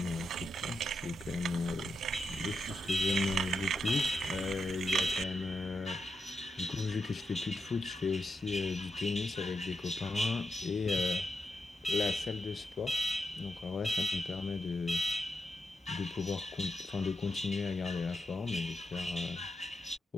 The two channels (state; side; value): normal; both; correlation 0.85